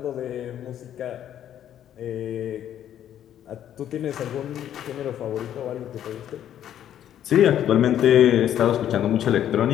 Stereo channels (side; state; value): right; quieter; 10.7 dB